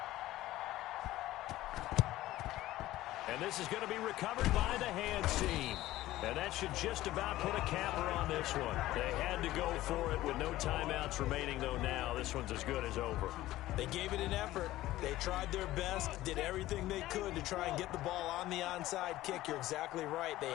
And this is going to be recovered by the hands team. And that should just about put a capper on this one. They had to go for it with no timeouts remaining, though now. This one's as good as over. They gave it an effort. They tried their best, did everything they could to try and get the ball on the onside kick. You're exactly right. They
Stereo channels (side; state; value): right; quieter; 15.9 dB